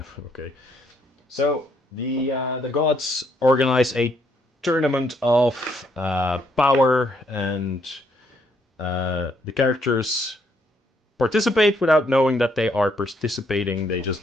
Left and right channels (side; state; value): both; normal; correlation 0.71